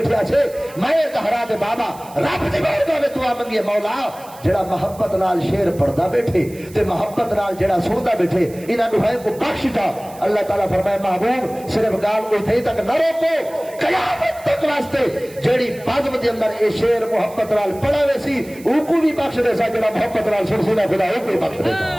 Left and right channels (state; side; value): noise; right; hiss, 21 dB below the sound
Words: اسے میں طہرا دے بابا رب دی بارگاہ وچ دعا منگی مولا جڑا محبت نال شیر پڑھدا بیٹھے تے محبت نال جڑا سندا بیٹھے انہاں نو ہے کو بخش دا اللہ تعالی فرمائے محبوب صرف گال اوتھے تک نہ روکو قیامت تک واسطے جڑی بزم دے اندر اے شیر محبت نال پڑھا ویسی او کو بھی بخش دے سا جڑا محبت نال سن خدا او کو بخش دے